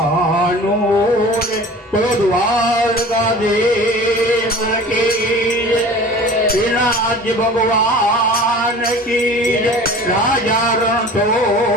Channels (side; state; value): both; normal; correlation 0.41